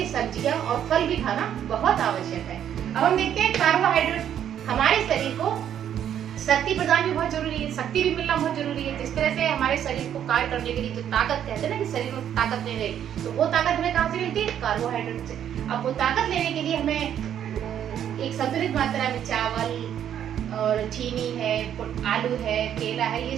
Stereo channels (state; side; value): quieter; left; 9.8 dB